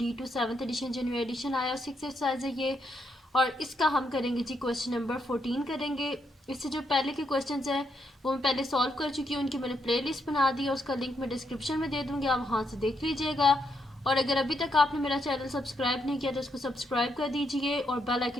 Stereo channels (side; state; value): both; normal; correlation 0.78